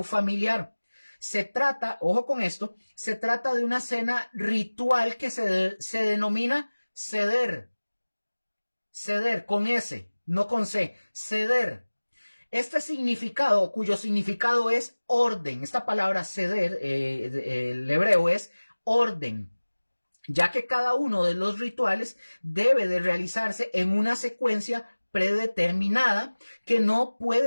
familiar. Se trata, ojo con esto, se trata de una cena ritual que se denomina seder. Seder, con S, no con C, seder. Este significado, cuyo significado es orden, esta palabra seder, el hebreo es orden, ya que cada uno de los rituales debe de realizarse en una secuencia predeterminada que no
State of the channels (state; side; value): inverted; both; correlation -1.00